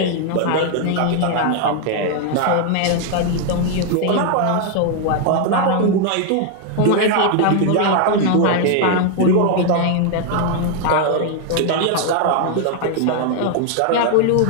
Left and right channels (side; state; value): both; different; correlation 0.00